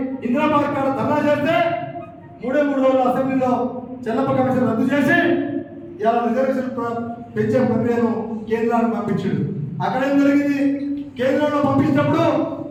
ఇందిరాబాద్ కాడ ధర్నా చేస్తే 3 రోజులు అసెంబ్లీలో చెల్లమ్మ కమిషన్ రద్దు చేసి ఇలా రిజర్వేషన్ పెంచే ప్రక్రియను కేంద్రానికి పంపించాడు. అక్కడ ఏం జరిగింది? కేంద్రంలో పంపించినప్పుడు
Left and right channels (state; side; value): identical; both; correlation 1.00